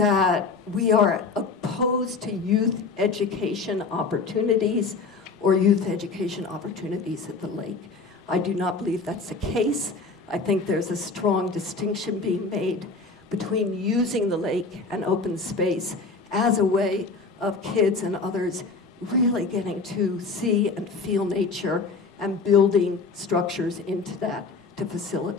we are opposed to youth education opportunities or youth education opportunities at the lake. I do not believe that's the case. I think there's a strong distinction being made between using the lake and open space as a way of kids and others really getting to see and feel nature and building structures into that to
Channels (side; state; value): right; quieter; 4.2 dB